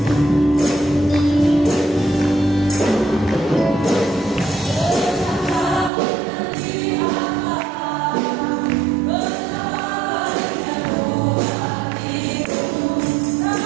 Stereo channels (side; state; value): left; drops out; at 5.9 s